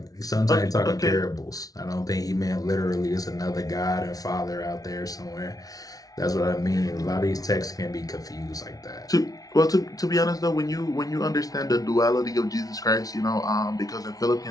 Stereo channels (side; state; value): right; late; 0.18 ms